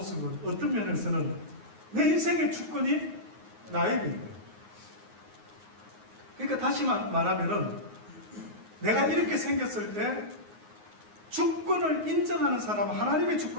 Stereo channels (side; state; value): left; late; 9.6 ms